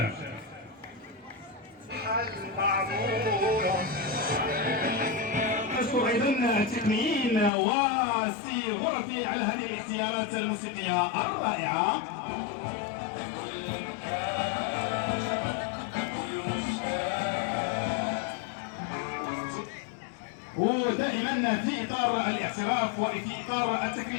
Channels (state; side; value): drops out; right; at 7.5 s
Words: نشكر ايضا التقنيين وسي غرفي على هذه الاختيارات الموسيقيه الرائعه. ودائما في اطار الاعتراف وفي اطار